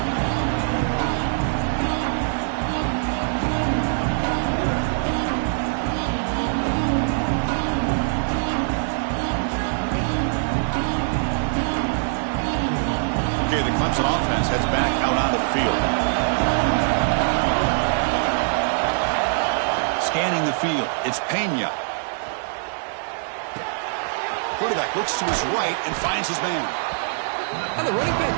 Okay, the Clemson offense heads back out onto the field. Scanning the field, it's Pena. Quarterback looks to his right and finds his man. And the running back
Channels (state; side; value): silent; left; digital silence